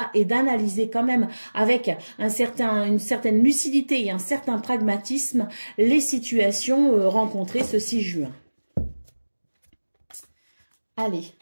et d'analyser quand même avec une certaine lucidité et un certain pragmatisme les situations rencontrées ce 6 juin. Allez,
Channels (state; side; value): inverted; both; correlation -1.00